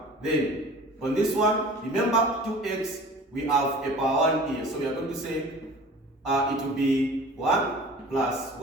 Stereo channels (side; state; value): both; normal; correlation 0.43